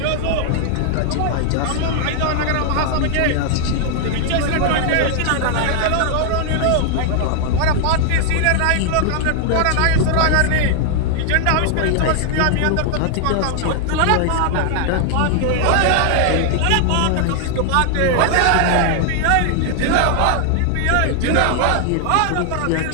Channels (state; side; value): different; both; correlation 0.00